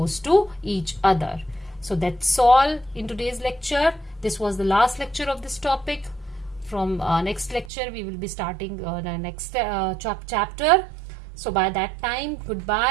to each other. So that's all in today's lecture. This was the last lecture of this topic. From next lecture we will be starting the next chapter. So by that time,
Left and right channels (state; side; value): drops out; left; at 7.7 s